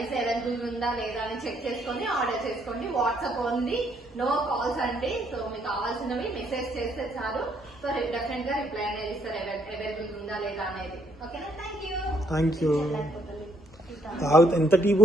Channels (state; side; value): normal; both; correlation 0.70